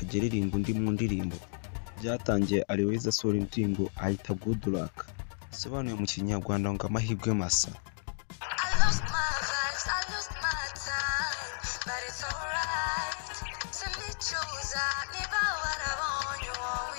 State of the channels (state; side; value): silent; right; digital silence